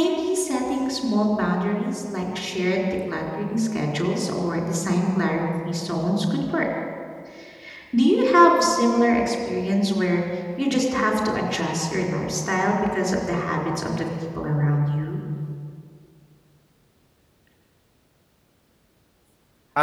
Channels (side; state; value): both; identical; correlation 1.00